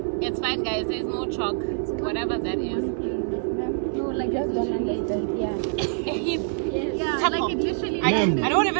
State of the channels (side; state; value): left; silent; digital silence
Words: It's fine, guys. There's no chalk. Whatever that is. No, like it's literally a heap. Yeah. A heap. Yeah, like it literally. I don't